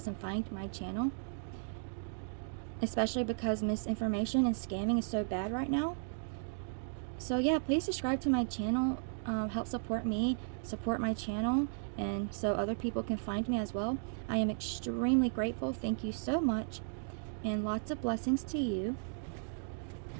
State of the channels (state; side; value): silent; left; digital silence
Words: and find my channel, especially because misinformation and scamming is so bad right now. So yeah, please subscribe to my channel. Help support me, support my channel, and so other people can find me as well. I am extremely grateful. Thank you so much, and lots of blessings to you.